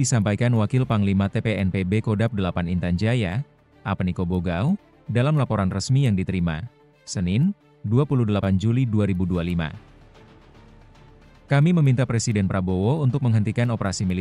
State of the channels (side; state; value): both; identical; correlation 1.00